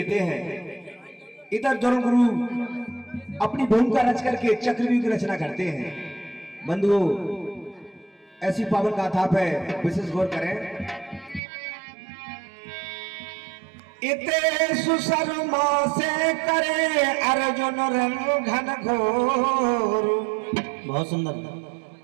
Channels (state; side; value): drops out; left; at 11.4 s